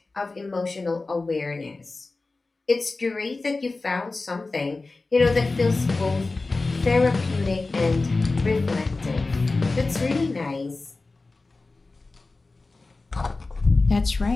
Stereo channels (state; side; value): quieter; right; 3.5 dB